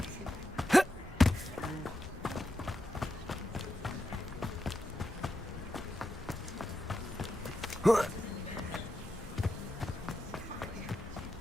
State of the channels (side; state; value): both; normal; correlation 0.87